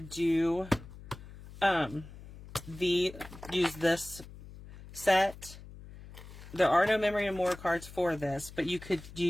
do, use this set. There are no memory and more cards for this, but you could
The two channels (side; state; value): left; noise; hum, 16 dB below the sound